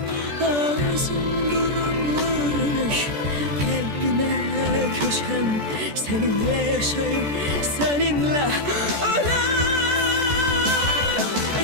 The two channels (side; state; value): left; late; 14 ms